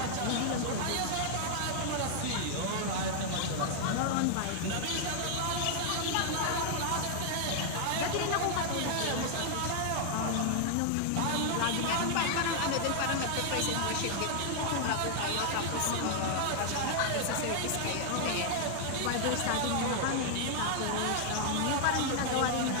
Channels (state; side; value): different; both; correlation 0.00